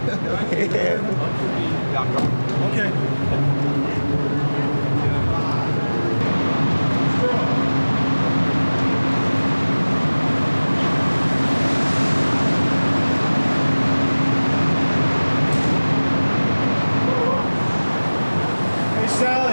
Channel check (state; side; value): inverted; both; correlation -1.00